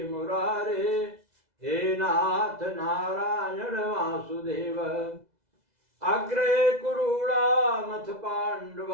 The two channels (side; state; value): left; late; 2.0 ms